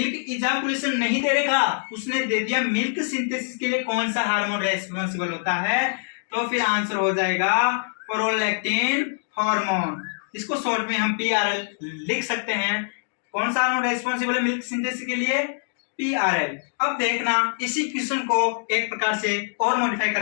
इजाकुलेशन नहीं दे रखा, उसने दे दिया मिल्क सिंथेसिस के लिए कौन सा हार्मोन रेस्पॉन्सिबल होता है। तो फिर आंसर हो जाएगा प्रोलैक्टिन हार्मोन। इसको शॉर्ट में हम पीआरएल लिख सकते हैं। कौन सा हार्मोन रेस्पॉन्सिबल है मिल्क सिंथेसिस के लिए? पीआरएल। अब देखना इसी क्वेश्चन को एक प्रकार से और मॉडिफाई कर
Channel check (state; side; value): silent; right; digital silence